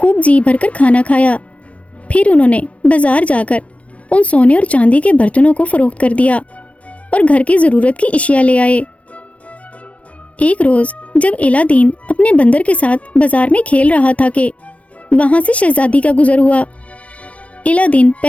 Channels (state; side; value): late; right; 0.064 ms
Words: جی بھر کر کھانا کھایا، پھر انہوں نے بازار جا کر ان سونے اور چاندی کے برتنوں کو فروخت کر دیا اور گھر کی ضرورت کی اشیاء لے آئے۔ ایک روز جب الہ دین اپنے بندر کے ساتھ بازار میں کھیل رہا تھا کہ وہاں سے شہزادی کا گزر ہوا۔ الہ دین